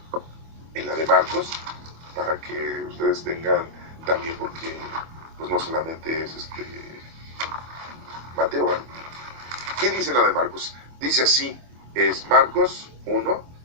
en la de Marcos, para que ustedes tengan también, porque pues no solamente es Mateo, ¿verdad? ¿Qué dice en la de Marcos? Dice así, es Marcos 1,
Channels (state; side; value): late; left; 25 ms